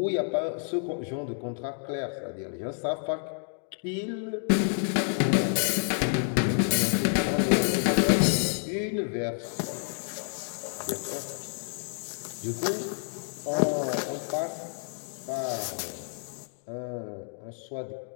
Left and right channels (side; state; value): right; silent; 58 dB below the other